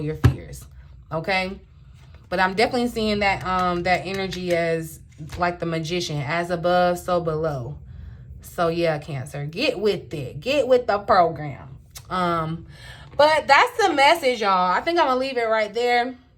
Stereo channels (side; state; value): both; identical; correlation 1.00